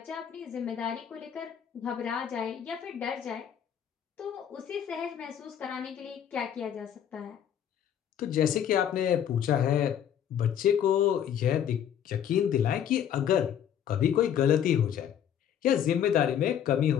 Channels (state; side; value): quieter; right; 9.3 dB